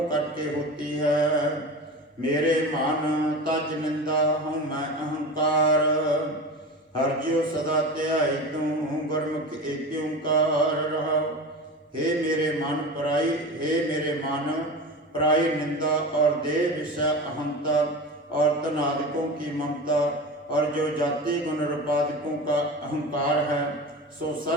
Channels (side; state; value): both; normal; correlation 0.29